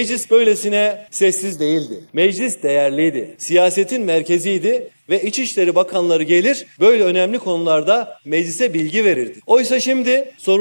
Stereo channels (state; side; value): inverted; both; correlation -1.00